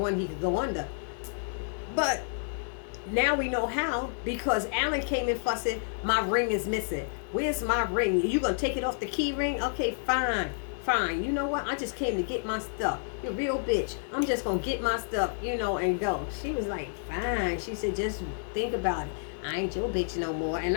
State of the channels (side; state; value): right; silent; digital silence